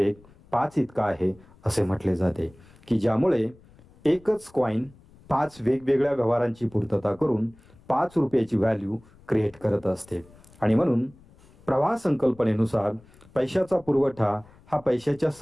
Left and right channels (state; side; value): noise; left; rumble, 26 dB below the sound